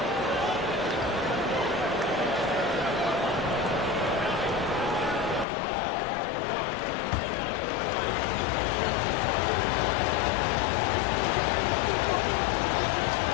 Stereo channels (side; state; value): right; drops out; at 5.5 s